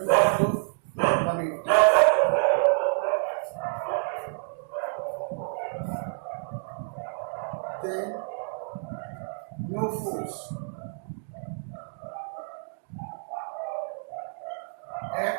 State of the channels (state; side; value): silent; left; digital silence